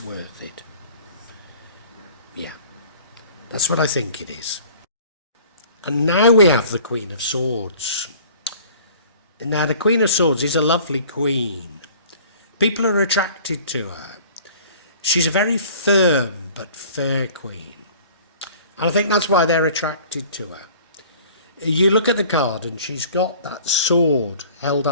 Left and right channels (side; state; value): both; inverted; correlation -0.49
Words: worth it. Yeah, that's what I think it is. And now we have the Queen of Swords. Now the Queen of Swords is a lovely queen. People are attracted to her. She's a very firm but fair queen. And I think that's why they're attracted to her. You look at the card and she's got that sword held